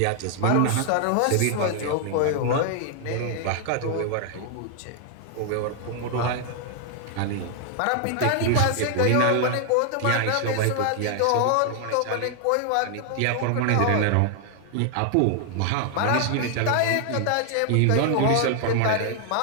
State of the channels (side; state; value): both; different; correlation 0.00